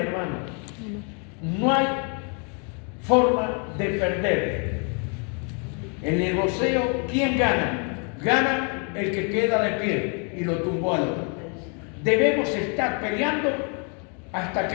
No hay forma de perder. El negocio, ¿quién gana? Gana el que queda de pie y lo tumbó al otro. Debemos estar peleando hasta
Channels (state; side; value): quieter; right; 38.0 dB